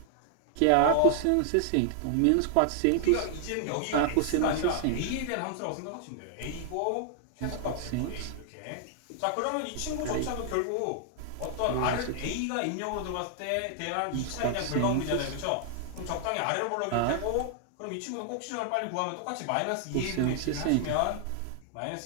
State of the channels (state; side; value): different; both; correlation 0.00